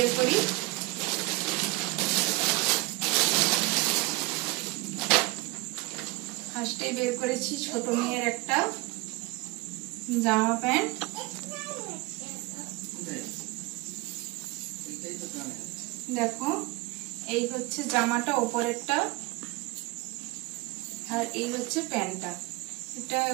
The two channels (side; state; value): left; quieter; 23.1 dB